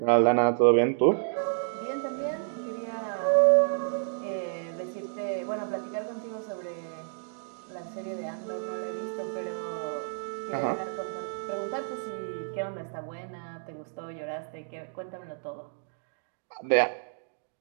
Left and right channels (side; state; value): left; silent; digital silence